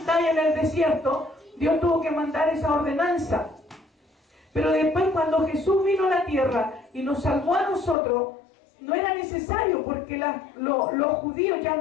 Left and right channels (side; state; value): right; drops out; at 8.0 s